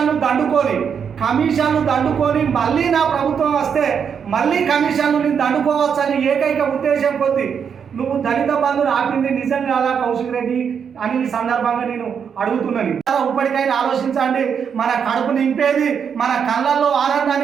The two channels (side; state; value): left; quieter; 7.1 dB